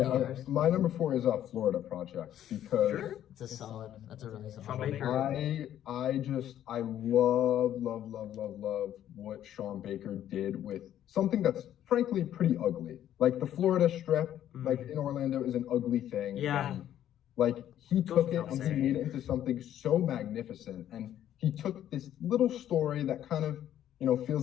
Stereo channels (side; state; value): right; quieter; 11.3 dB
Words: do yours? My number 4 is Florida Project because It's a solid. That's a really solid. Sean one. Baker. I love what Sean Baker did with something that's frankly pretty ugly. Like the Florida Strip, like in Orlando, is an ugly thing. Yeah. And, like he took it without and he saying. made it into something so magnificent, and he took this little story that kind of